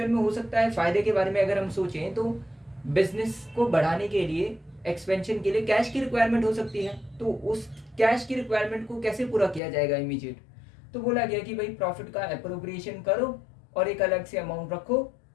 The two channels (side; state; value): right; drops out; at 9.6 s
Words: में हो सकता है फायदे के बारे में अगर हम सोचें तो बिजनेस को बढ़ाने के लिए, एक्सपेंशन के लिए कैश की रिक्वायरमेंट हो सकती है। तो उस कैश की रिक्वायरमेंट को कैसे पूरा किया जाएगा इमीडिएट? तो बोला गया कि भाई प्रॉफिट का अप्रोप्रिएशन करो और एक अलग से अमाउंट रखो